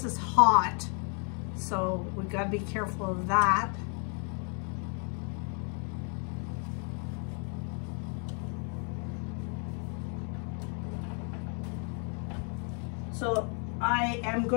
is hot, so we've got to be careful of that. So I am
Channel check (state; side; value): quieter; right; 39.3 dB